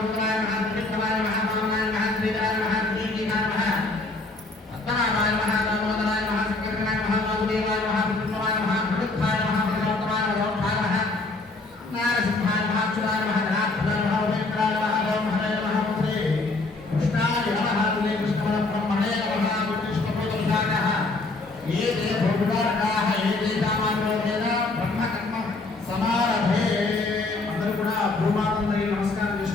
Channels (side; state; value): right; quieter; 3.3 dB